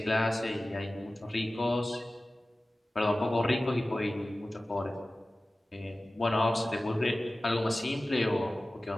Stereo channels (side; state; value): both; normal; correlation 0.96